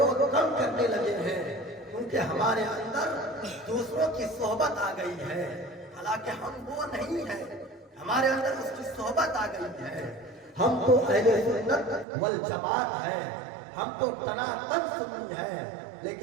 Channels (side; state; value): left; drops out; at 12.1 s